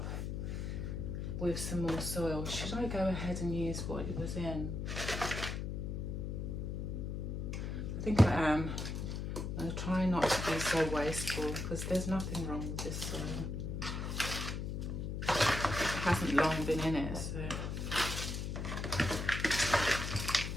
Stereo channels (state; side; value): noise; left; hum, 3 dB below the sound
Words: with some more soil. Should I go ahead and use what it was in? I think I am. I'm going to try not to be so wasteful because there's nothing wrong with this soil. It hasn't long been in it, so.